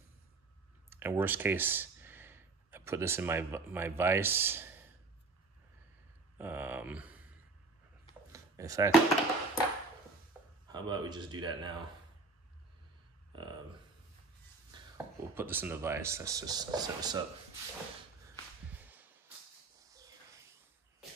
worst case, I put this in my vise. In fact, how about we just do that now? We'll put this in the vise. Let's just set this up.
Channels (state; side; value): quieter; left; 3.8 dB